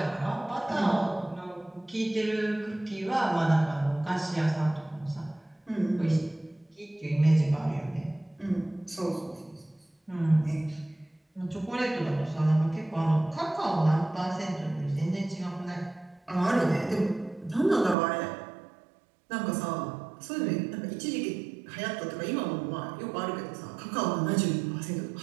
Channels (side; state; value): left; drops out; at 17.9 s